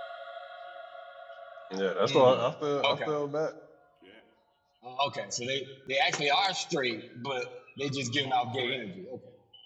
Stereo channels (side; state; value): both; identical; correlation 1.00